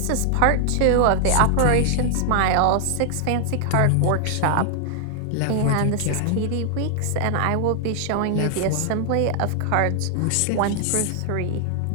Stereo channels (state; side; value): different; both; correlation -0.01